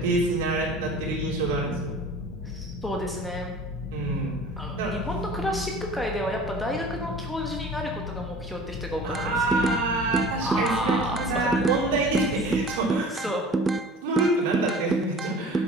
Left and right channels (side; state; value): both; normal; correlation 0.43